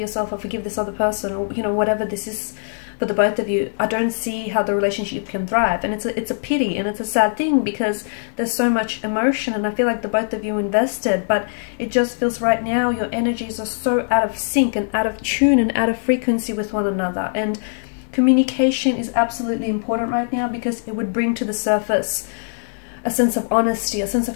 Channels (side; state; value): right; silent; digital silence